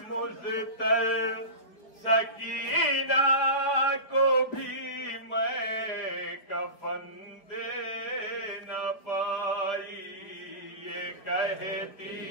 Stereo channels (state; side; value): late; right; 5.0 ms